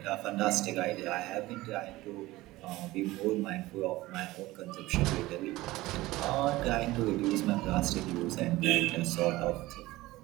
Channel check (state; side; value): quieter; left; 18.5 dB